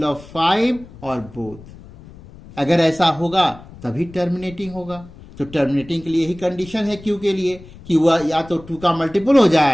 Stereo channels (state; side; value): noise; left; rumble, 20 dB below the sound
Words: ऑफ 5 और बोथ। अगर ऐसा होगा तभी टर्मिनेटिंग होगा। तो टर्मिनेटिंग के लिए ही कंडीशन है q के लिए कि वह या तो 2 का मल्टीपुल हो